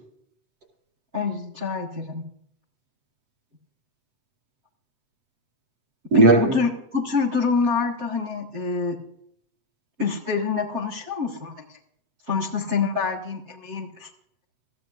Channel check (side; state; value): left; late; 7.4 ms